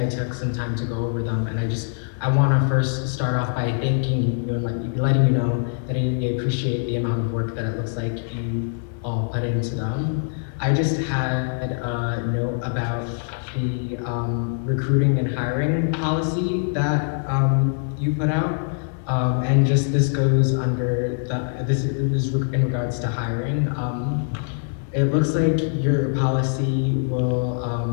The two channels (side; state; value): right; silent; digital silence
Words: took some time to go over them, and I want to first start off by thanking you and letting you know that I appreciate the amount of work that it looks like you all put into them. I just had a note about the recruiting and hiring policy that you put out. And just this goes under this is in regards to hiring. It looks like your policy will